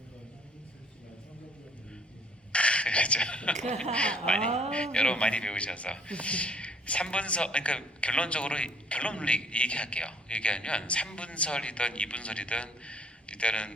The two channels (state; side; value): normal; both; correlation 0.60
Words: 그렇죠. 여러분 많이 배우셔서 3분설, 그러니까 결론적으로 결론을 얘기할게요. 얘기하면 3분설이든 2분설이든